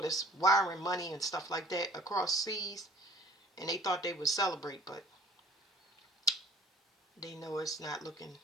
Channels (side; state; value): both; normal; correlation 0.51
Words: that's wiring money and stuff like that across seas, and they thought they would celebrate, but they know it's not looking